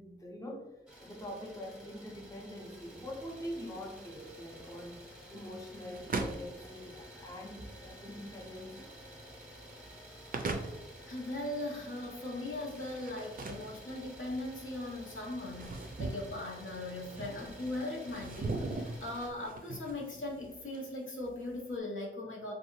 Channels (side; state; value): both; normal; correlation 0.49